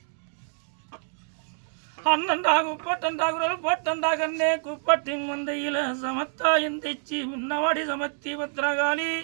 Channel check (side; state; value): left; silent; digital silence